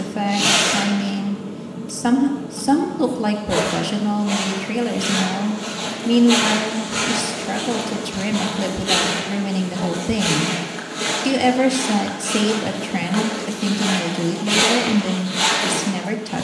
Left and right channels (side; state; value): both; identical; correlation 1.00